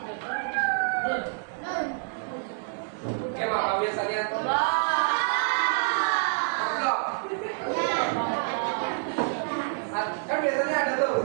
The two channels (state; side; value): silent; left; digital silence